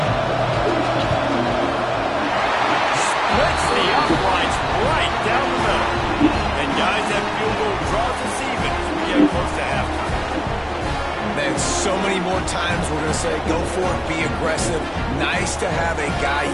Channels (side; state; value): both; identical; correlation 1.00